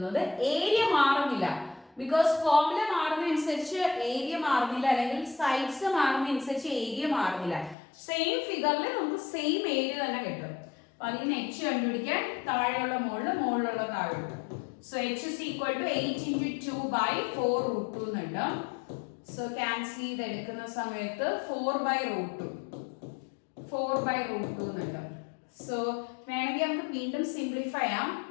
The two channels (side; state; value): right; drops out; at 7.8 s